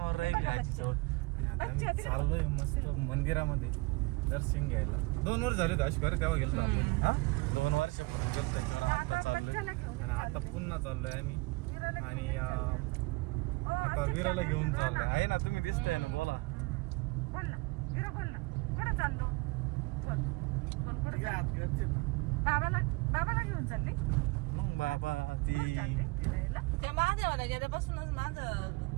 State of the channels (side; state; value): left; quieter; 25.3 dB